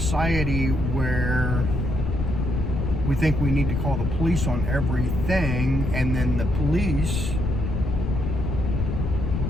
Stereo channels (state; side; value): noise; left; rumble, 1 dB below the sound